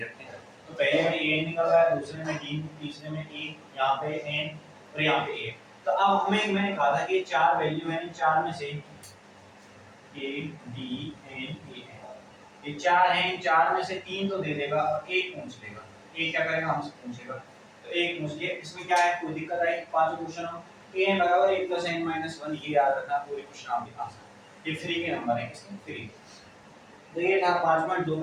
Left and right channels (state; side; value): identical; both; correlation 1.00